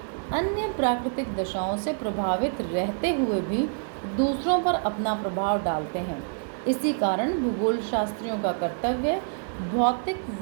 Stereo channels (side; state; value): left; silent; digital silence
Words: अन्य प्राकृतिक दशाओं से प्रभावित रहते हुए भी दूसरों पर अपना प्रभाव डालते हैं। इसी कारण भूगोल शास्त्रियों का कर्तव्य भौतिक